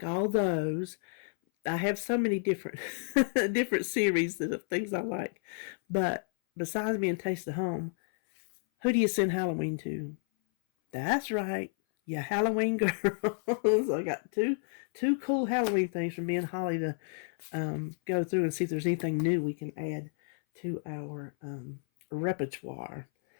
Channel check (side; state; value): right; silent; 57 dB below the other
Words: all those. I have so many different different series of things I like. But besides being Taste of Home, who do you send Halloween to? That's right. Yeah, Halloween girls. I got two cool Halloween things from me and Holly to go through and see if there's anything new we can add to our repertoire.